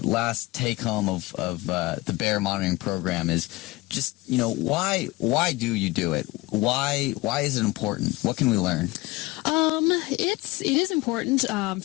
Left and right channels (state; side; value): quieter; right; 21.2 dB